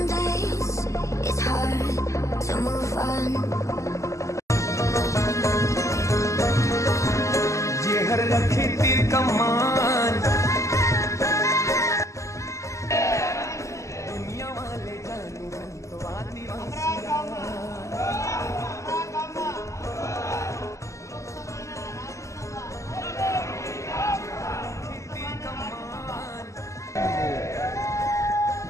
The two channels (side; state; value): right; late; 0.15 ms